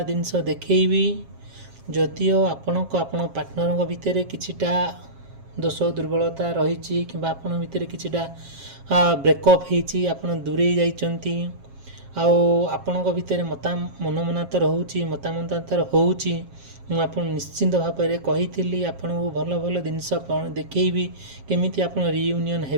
जिनस देखी जदिओ आपण को आपण पार्टनर भितर किछिटा दोष दुर्बलता रही कि आपण भितर किछिटा ब्रेकअप होती आपण दूरे जाइचंती आपण भितर मनमनातर होउची मतामतांतर होउची मुझे निश्चिंत भाव में कही आपन भल भल जिनस देखी केमिति आपन रियूनियन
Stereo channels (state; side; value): late; left; 7.4 ms